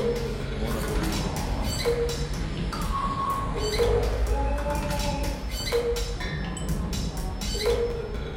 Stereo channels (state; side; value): identical; both; correlation 1.00